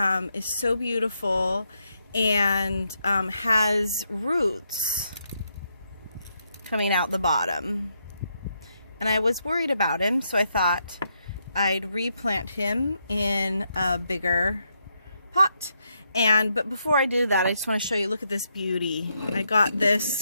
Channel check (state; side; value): inverted; both; correlation -0.79